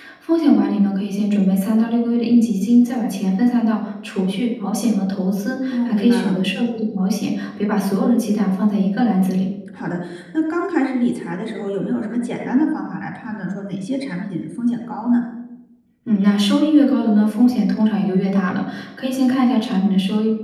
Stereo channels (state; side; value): identical; both; correlation 1.00